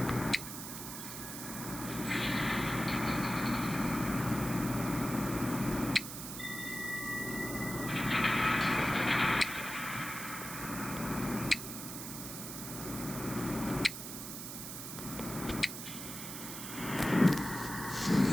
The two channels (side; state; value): right; noise; hiss, 8 dB below the sound